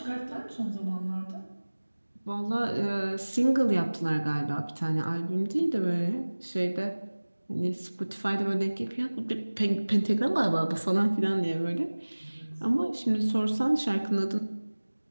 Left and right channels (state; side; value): inverted; both; correlation -1.00